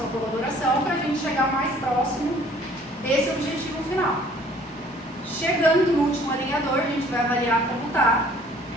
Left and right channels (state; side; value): normal; both; correlation 0.55